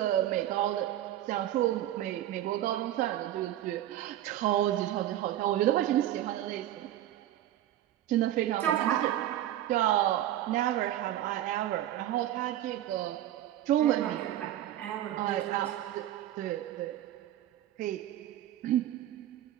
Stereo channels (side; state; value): left; quieter; 12.9 dB